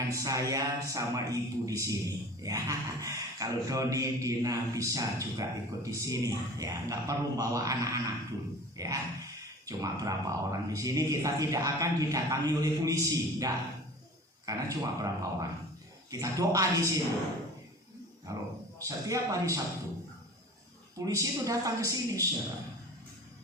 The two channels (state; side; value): normal; both; correlation 0.41